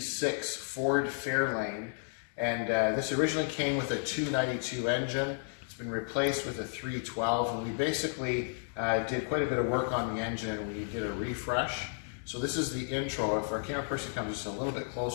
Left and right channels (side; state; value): right; silent; 56 dB below the other